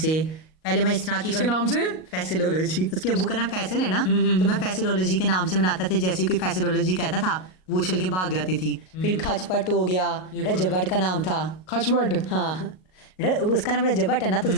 पहले मैं इस तरह की किसके नाम से? फैसिलोलॉजी, उसके अब्बू का नाम फैसल है ना, तो मैं फैसिलोलॉजी के नाम से बनाता था। जैसे कोई फैसिलोलॉजी कहता था वो उछल के भाग जाती थी। फिर खचपट हो गया, रजब भट्ट का नाम था। खचपट? हाँ उसका नाम रजब भट्ट है ना, तो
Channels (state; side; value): late; right; 38 ms